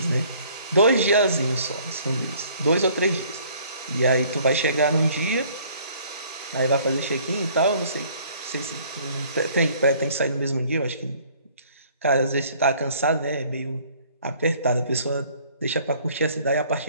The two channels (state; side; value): inverted; both; correlation -0.57